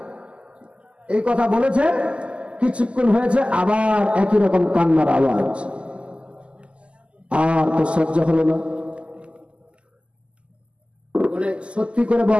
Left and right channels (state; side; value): late; left; 0.054 ms